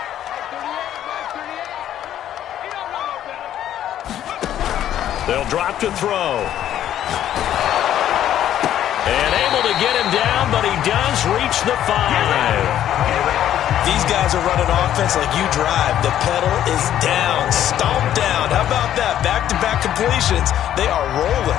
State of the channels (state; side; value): quieter; right; 11.3 dB